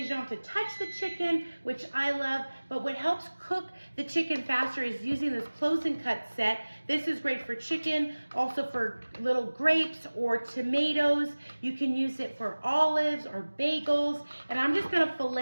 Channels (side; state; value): both; inverted; correlation -1.00